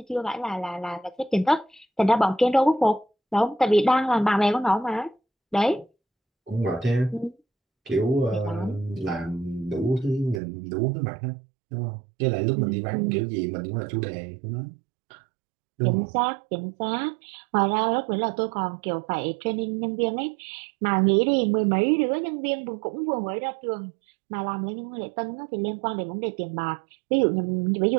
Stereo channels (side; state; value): left; drops out; at 10.4 s